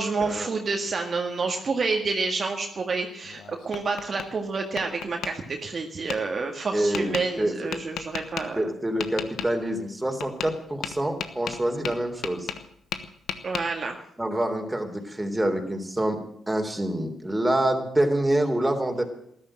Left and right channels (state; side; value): normal; both; correlation 0.90